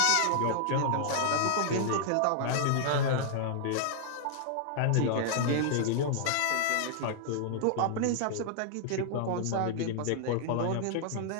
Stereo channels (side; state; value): both; different; correlation -0.01